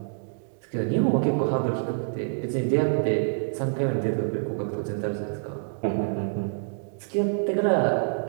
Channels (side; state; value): left; silent; digital silence